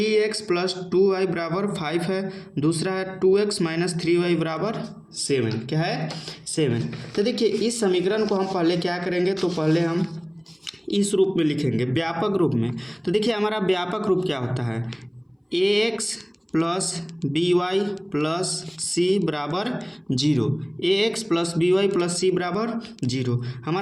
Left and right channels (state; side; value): identical; both; correlation 1.00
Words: + 2y = 5 है, दूसरा है 2x - 3y = 7। क्या है? 7। तो देखिए इस समीकरण को हम पहले क्या करेंगे, तो पहले हम इस रूप में लिखेंगे, व्यापक रूप में। तो देखिए हमारा व्यापक रूप क्या होता है, ax + by + c = 0। ax + by + c = 0।